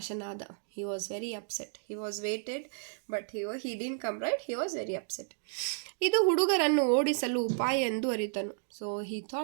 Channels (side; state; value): left; silent; digital silence